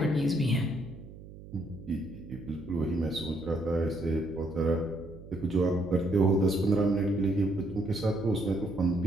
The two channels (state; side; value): noise; right; hum, 16 dB below the sound